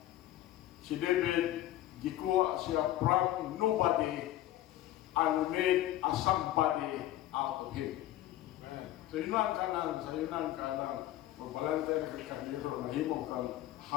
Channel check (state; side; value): quieter; right; 14.1 dB